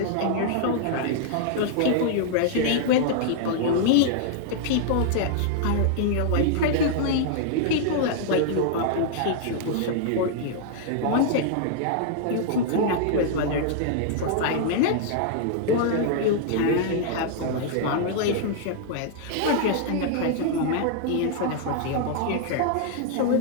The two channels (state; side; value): different; both; correlation -0.01